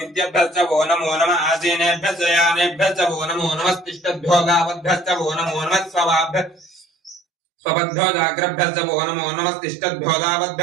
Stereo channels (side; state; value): left; drops out; at 7.2 s